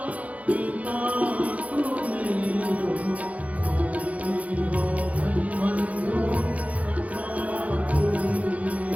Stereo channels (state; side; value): late; left; 0.068 ms